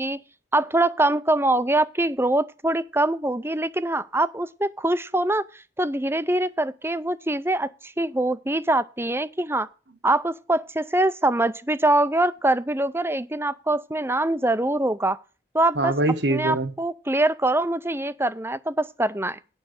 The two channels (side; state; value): both; normal; correlation 0.69